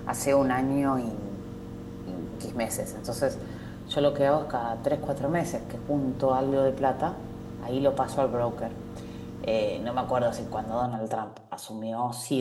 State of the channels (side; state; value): both; identical; correlation 1.00